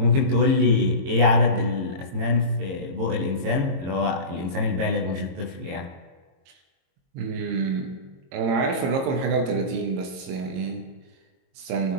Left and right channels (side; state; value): left; late; 22 ms